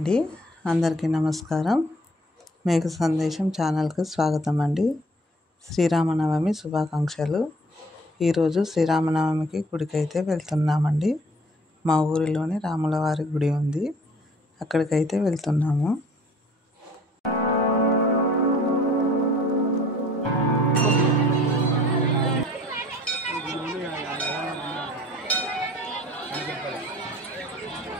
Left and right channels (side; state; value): both; normal; correlation 0.54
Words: అందరికీ నమస్కారం. మేఘ సందేశం ఛానల్కి స్వాగతం అండి. శ్రీరామనవమి శుభాకాంక్షలు. ఈరోజు శ్రీరామనవమికి గుడికైతే వెళ్తున్నామండి. మా ఊరిలోని రాములవారి గుడి ఉంది, అక్కడికైతే వెళ్తున్నాము.